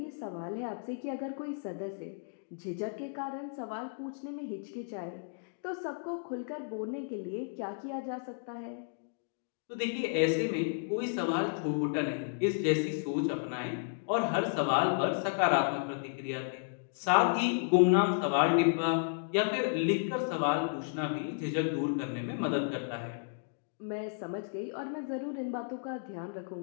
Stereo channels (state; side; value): silent; right; digital silence